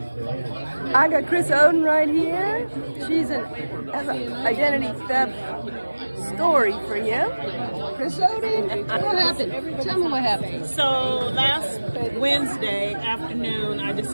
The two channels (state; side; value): inverted; both; correlation -1.00